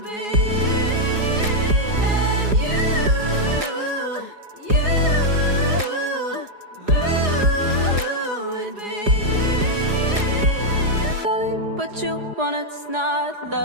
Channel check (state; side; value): late; left; 4.8 ms